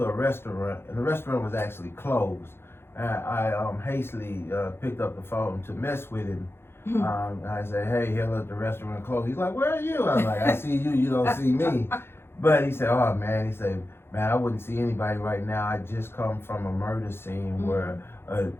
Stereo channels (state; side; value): late; right; 0.11 ms